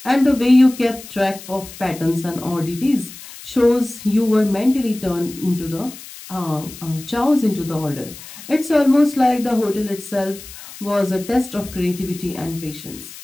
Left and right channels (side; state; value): left; noise; hiss, 16 dB below the sound